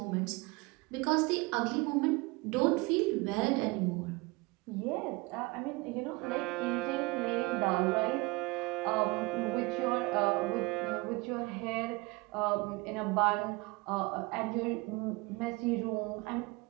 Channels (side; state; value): left; quieter; 24.3 dB